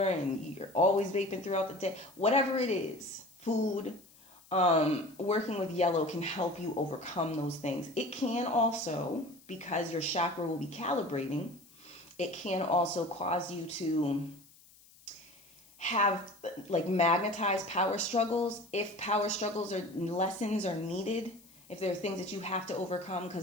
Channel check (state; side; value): noise; left; hiss, 26 dB below the sound